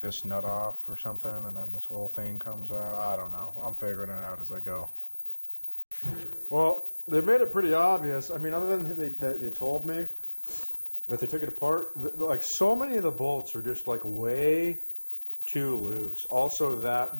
nut off or something and then this whole thing comes out. I don't know. I'm figuring it out as I go. Well, they made it pretty obvious. I mean, other than they told me that they took it apart, like so many of the bolts are just like way too loose. Also, that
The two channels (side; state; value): both; inverted; correlation -1.00